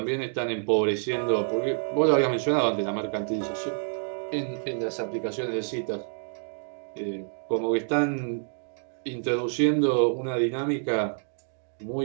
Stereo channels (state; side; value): silent; left; digital silence